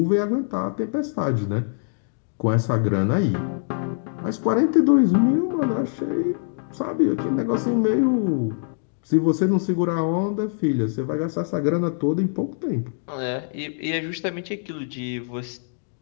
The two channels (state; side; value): silent; right; digital silence